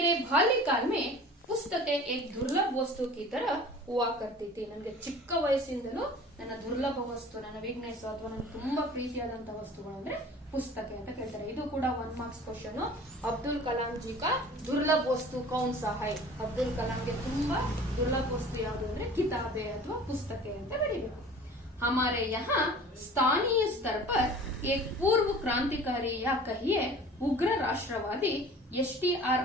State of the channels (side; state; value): both; normal; correlation 0.44